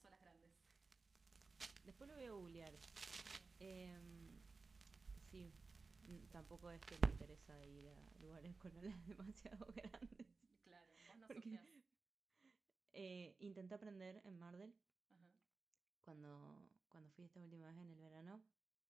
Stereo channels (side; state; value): left; quieter; 4.1 dB